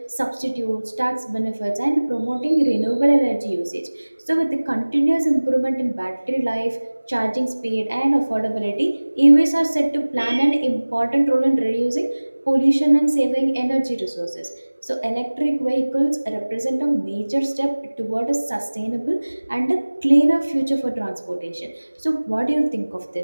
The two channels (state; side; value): inverted; both; correlation -1.00